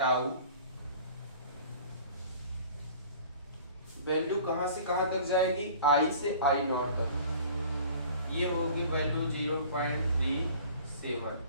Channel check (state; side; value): inverted; both; correlation -0.47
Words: वैल्यू कहां से कहां तक जाएगी, आई से आई नॉट तक। ये होगी वैल्यू 0.37